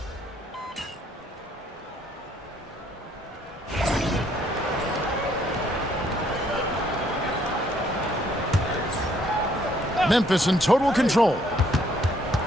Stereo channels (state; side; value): normal; both; correlation 0.66